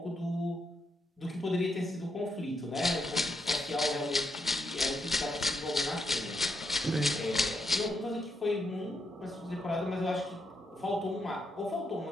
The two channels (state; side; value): normal; both; correlation 0.81